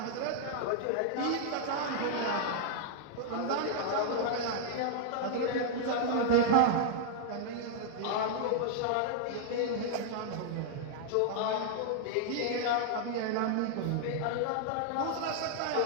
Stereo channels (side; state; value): both; different; correlation -0.01